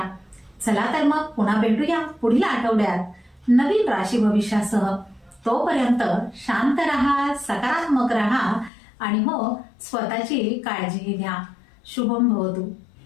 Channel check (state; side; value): drops out; right; at 8.7 s